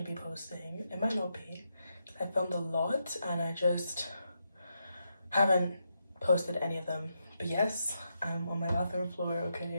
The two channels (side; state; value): both; inverted; correlation -0.83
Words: gonna be posting. It might not be. I filmed a lot and I just haven't posted any of them. But yes, I'm on my bathroom floor,